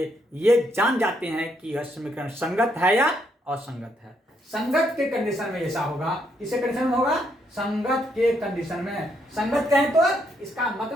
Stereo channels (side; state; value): both; normal; correlation 0.75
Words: ये जान जाते हैं कि यह समीकरण संगत है या असंगत है। संगत के कंडीशन में ऐसा होगा। किसके कंडीशन में होगा? संगत के कंडीशन में। संगत कहें तो इसका